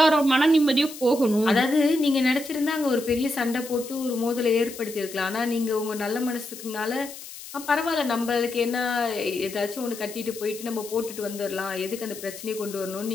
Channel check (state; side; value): noise; left; hiss, 13 dB below the sound